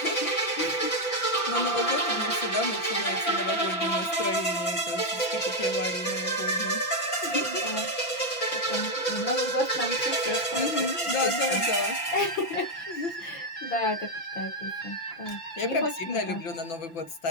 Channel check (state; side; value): late; right; 5.9 ms